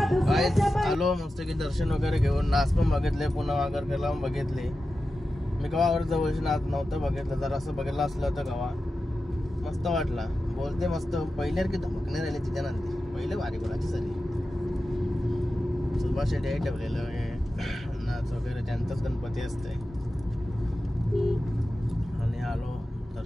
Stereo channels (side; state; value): both; normal; correlation 0.93